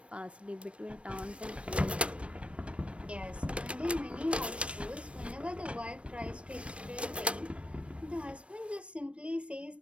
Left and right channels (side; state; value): left; late; 0.061 ms